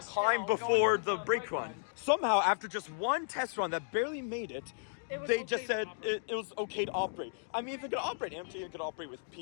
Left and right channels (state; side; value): silent; right; digital silence